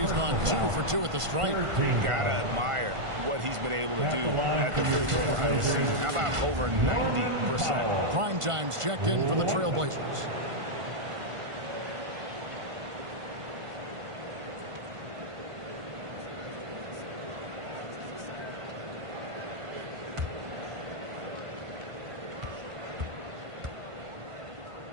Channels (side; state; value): left; late; 1.5 ms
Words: gone 2 for 2 at the stripe. Gotta admire what he's been able to do at the free throw line this season. How about over 90%? Prime time's checked in for the Trailblazers.